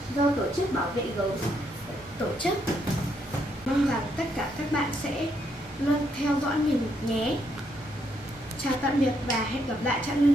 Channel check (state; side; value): normal; both; correlation 0.75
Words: do tổ chức bảo vệ gấu tổ chức. Mong rằng tất cả các bạn sẽ luôn theo dõi mình nhé. Chào tạm biệt và hẹn gặp lại Trạng